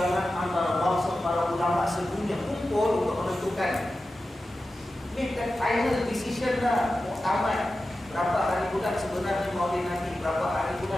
antara bangsa para ulama sedunia kumpul untuk menentukan. Make that final decision lah, muktamad. Berapa hari bulan sebenarnya Maulid Nabi, berapa hari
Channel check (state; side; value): normal; both; correlation 0.93